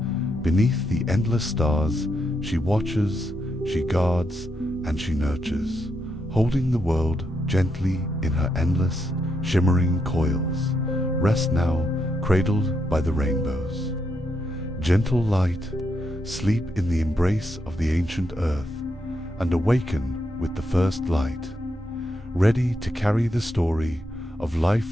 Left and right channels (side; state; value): both; normal; correlation 0.81